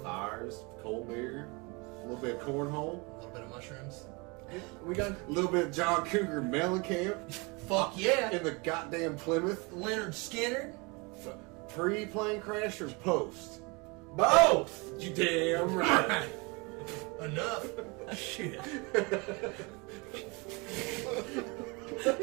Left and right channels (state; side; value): quieter; left; 28.3 dB